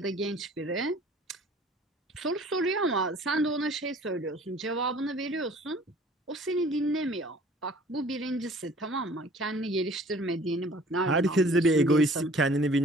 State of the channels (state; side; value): normal; both; correlation 0.51